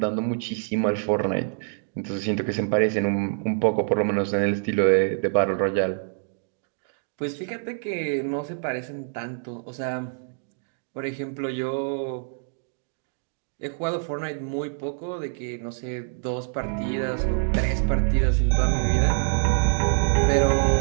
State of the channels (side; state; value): left; silent; digital silence